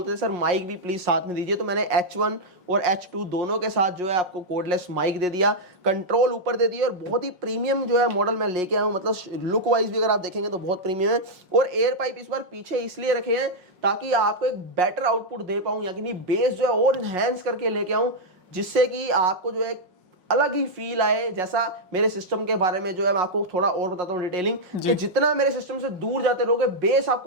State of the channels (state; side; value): late; left; 5.5 ms